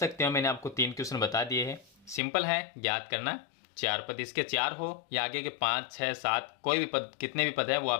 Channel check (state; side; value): drops out; right; at 2.2 s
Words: हो, मैंने आपको 3 क्वेश्चन बता दिए हैं। सिंपल है ज्ञात करना, 4 पद इसके 4 हो या आगे के 5, 6, 7 कोई भी पद, कितने भी पद है वो